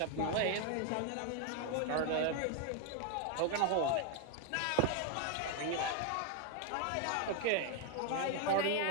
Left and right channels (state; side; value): different; both; correlation 0.01